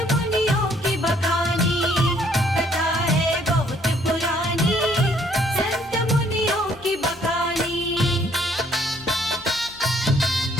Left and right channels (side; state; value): left; noise; hum, 24 dB below the sound